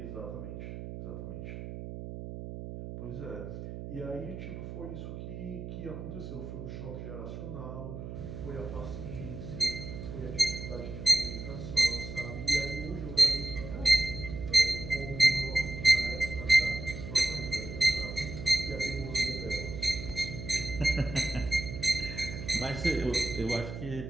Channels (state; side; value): noise; right; hum, 8 dB below the sound